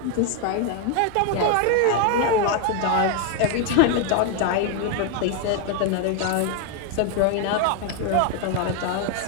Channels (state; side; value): different; both; correlation 0.01